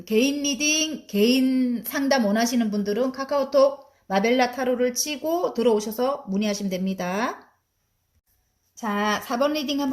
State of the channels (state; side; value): identical; both; correlation 1.00